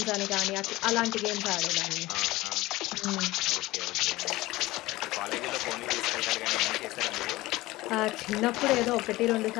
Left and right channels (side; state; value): right; quieter; 18.8 dB